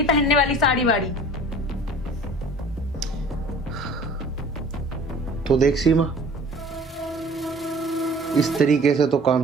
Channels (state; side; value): normal; both; correlation 0.47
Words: पहनने वाली साड़ी वाड़ी। तो देख सीमा, इस तरीके से तो काम